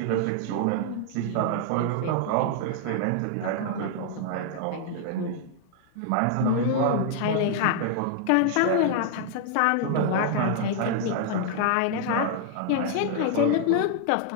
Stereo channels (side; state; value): both; different; correlation 0.00